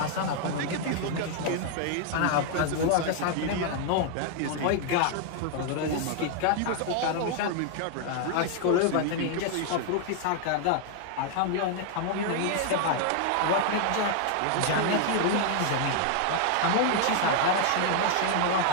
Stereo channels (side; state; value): both; different; correlation 0.00